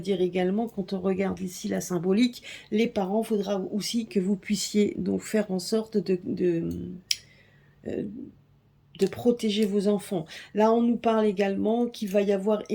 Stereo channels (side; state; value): both; identical; correlation 1.00